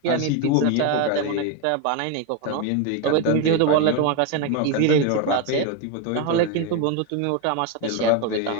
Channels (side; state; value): both; different; correlation 0.02